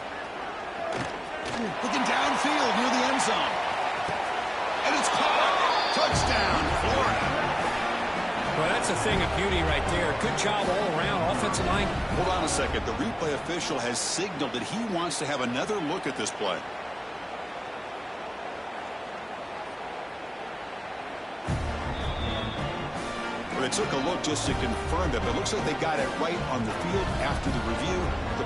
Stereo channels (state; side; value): identical; both; correlation 1.00